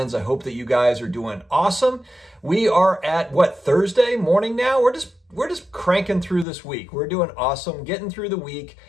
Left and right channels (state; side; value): drops out; right; at 6.5 s